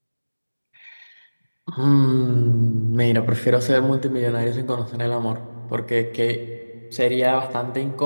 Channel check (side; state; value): both; inverted; correlation -1.00